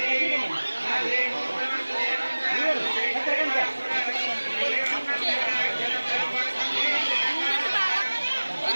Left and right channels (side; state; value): both; inverted; correlation -1.00